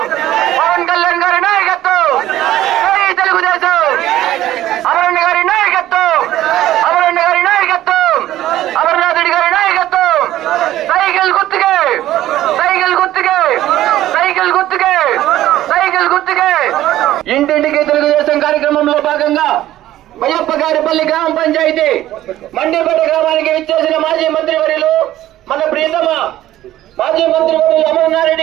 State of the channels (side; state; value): left; quieter; 13.9 dB